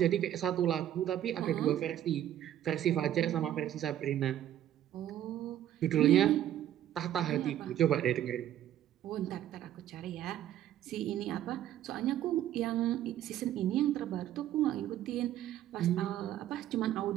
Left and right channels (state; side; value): quieter; left; 11.8 dB